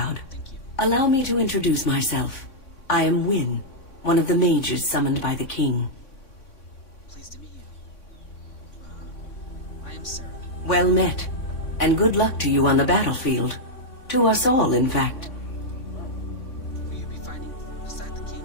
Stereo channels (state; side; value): late; right; 3.6 ms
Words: Thank you. Allow me to introduce myself. I am Wynne, one of the mages summoned by the king. Pleased to meet you. I am Sarah. Well met, and good luck to you on the battlefield. To us all, in fact. Will you be fighting beside the